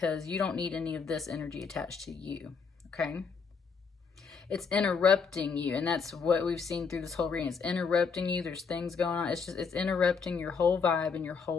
you don't need any of this energy attached to you, okay? It's interrupting you, and that's what we've seen through this whole reading. It's interrupting you. There's things going on. It's interrupting your whole vibe and your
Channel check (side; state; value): right; quieter; 5.4 dB